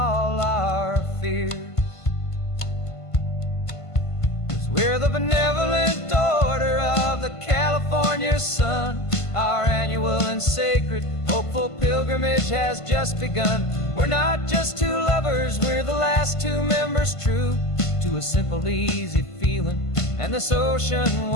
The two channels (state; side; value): late; right; 1.5 ms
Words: our fears. 'Cause we're the benevolent order of the California sun. Our annual and sacred hopeful pilgrimage has just begun. We're not just two lovers, we're the last two members true to a simple, easy feeling and this ocean